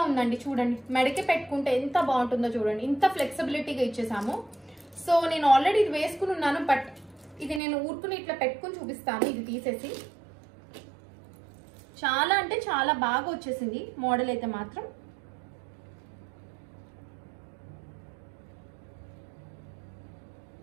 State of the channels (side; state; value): left; drops out; at 7.6 s